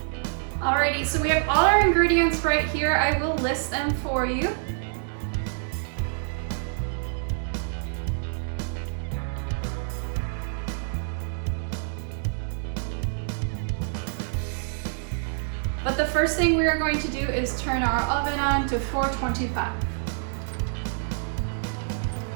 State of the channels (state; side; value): silent; left; 60 dB below the other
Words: Alrighty, so we have all our ingredients right here. I will list them for you. But the first thing we are going to do is turn our oven on to 425.